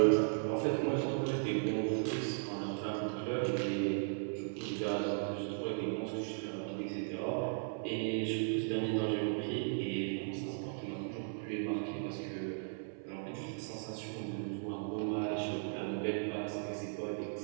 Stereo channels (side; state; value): left; silent; 53 dB below the other